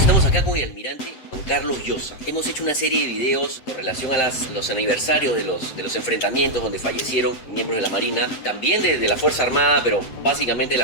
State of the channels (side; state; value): right; late; 7.8 ms